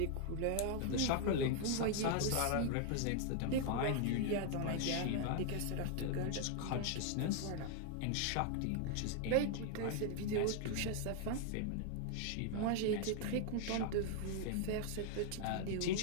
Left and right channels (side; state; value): both; different; correlation 0.00